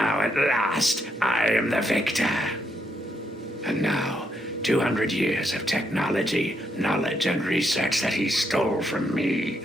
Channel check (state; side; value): normal; both; correlation 0.77